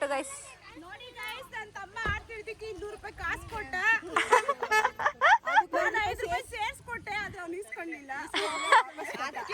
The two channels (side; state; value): both; identical; correlation 1.00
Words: ಗೈಸ್. ನೋಡಿ ಗೈಸ್, ನನ್ನ ತಮ್ಮ ಆಡ್ತಿದ್ದಕ್ಕೆ 200 ರೂಪಾಯಿ ಕಾಸು ಕೊಟ್ಟ, 5 ರೂಪಾಯಿ ಸೇರಿಸ್ಕೊಟ್ಟೆ, ಆದ್ರೆ ಅವ್ನು ಇಸ್ಕೊಂಡಿಲ್ಲ.